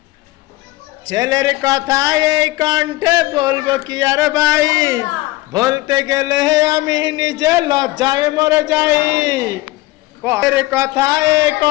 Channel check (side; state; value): right; quieter; 19.3 dB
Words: ছেলের কথা এই কণ্ঠে বলবো কি আর ভাই, বলতে গেলে আমি নিজে লজ্জায় মরে যাই। ছেলের কথা এই